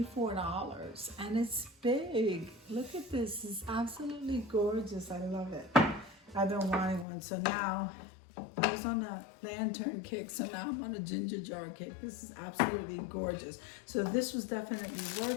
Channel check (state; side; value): drops out; right; at 7.1 s